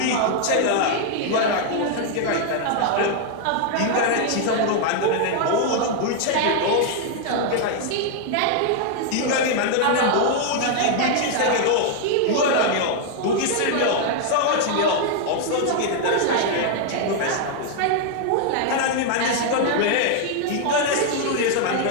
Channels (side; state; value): both; different; correlation 0.00